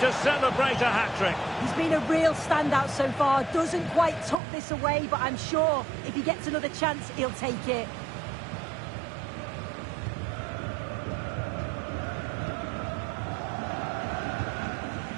to celebrate a hat-trick. He's been a real standout so far. Doesn't quite tuck this away, but I'm sure if he gets another chance, he'll take it.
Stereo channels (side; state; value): left; drops out; at 4.4 s